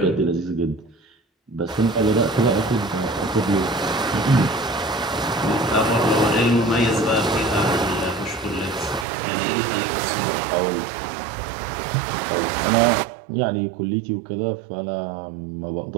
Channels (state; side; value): drops out; left; at 9.1 s